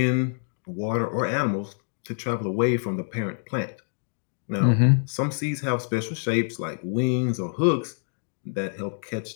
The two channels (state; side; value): silent; right; digital silence